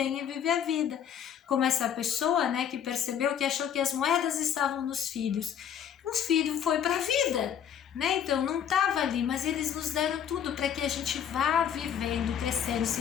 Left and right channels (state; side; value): quieter; right; 8.8 dB